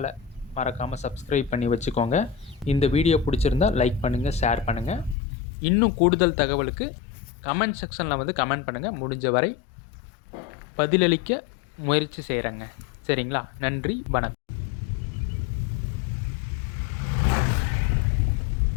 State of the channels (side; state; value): right; drops out; at 5.2 s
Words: மறக்காமல் சப்ஸ்கிரைப் பண்ணி வச்சுக்கோங்க. இந்த வீடியோ பிடிச்சிருந்தா லைக் பண்ணுங்கள், ஷேர் பண்ணுங்கள். இன்னும் கூடுதல் தகவலுக்கு கமெண்ட் செக்ஷனில் வந்து கமெண்ட் பண்ணுங்கள். முடிஞ்ச வரை பதிலளிக்க முயற்சி செய்கிறேங்க. சரிங்களா? நன்றி, வணக்கம்.